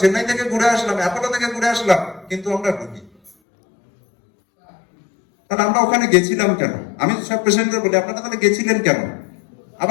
থেকে ঘুরে আসলাম, অ্যাপোলো থেকে ঘুরে আসলাম, কিন্তু আমরা রুগী। তাহলে আমরা ওখানে গেছিলাম কেন? আমি সব পেশেন্টদের বলি আপনারা তাহলে গেছিলেন কেন,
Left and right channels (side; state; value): right; drops out; at 3.3 s